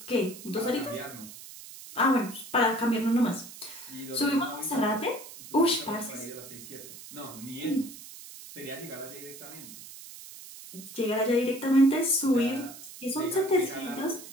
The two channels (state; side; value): noise; right; hiss, 15 dB below the sound